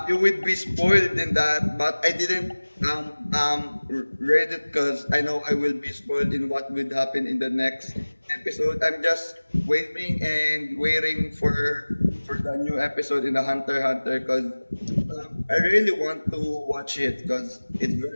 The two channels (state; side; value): inverted; both; correlation -1.00